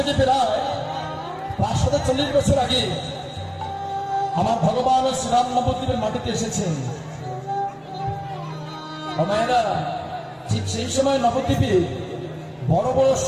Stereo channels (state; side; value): identical; both; correlation 1.00